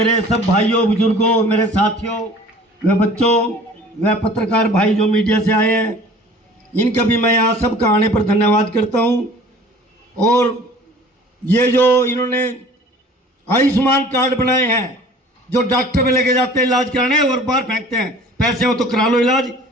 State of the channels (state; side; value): normal; both; correlation 0.47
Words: सब भाइयों बुजुर्गों, मेरे साथियों, व बच्चों, व पत्रकार भाई जो मीडिया से आए हैं, इनका भी मैं यहाँ सबका आने पर धन्यवाद करता हूँ। और ये जो इन्होंने आयुष्मान कार्ड बनाए हैं, जो डॉक्टर में लेके जाते हैं इलाज कराने और बाहर फेंकते हैं, पैसे हो तो करा लो इलाज,